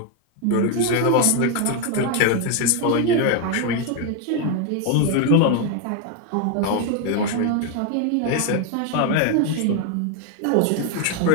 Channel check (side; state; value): both; different; correlation 0.01